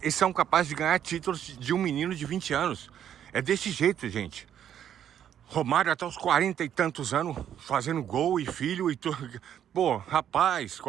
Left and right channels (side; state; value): left; quieter; 9.9 dB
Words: eles são capazes de ganhar títulos de um menino de 20 anos. É desse jeito, gente. Romário até os 40 e tantos anos, fazendo gol e filho e tudo. Pô, rapaz,